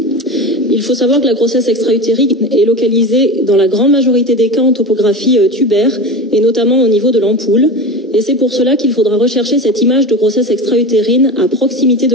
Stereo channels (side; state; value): both; normal; correlation 0.27